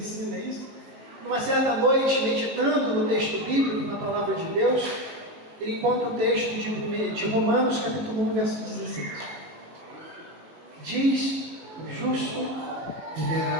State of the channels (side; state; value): left; late; 19 ms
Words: isso, numa certa noite, meditando no texto bíblico, na palavra de Deus, ele encontra o texto de Romanos, capítulo 1, verso 17. Diz: o justo